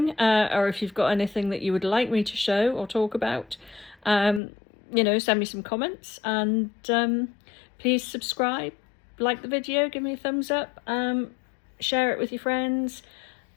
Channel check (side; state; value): right; drops out; at 4.4 s